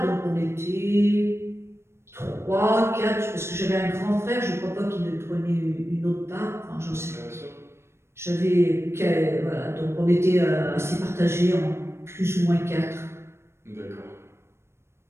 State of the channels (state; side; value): late; left; 0.13 ms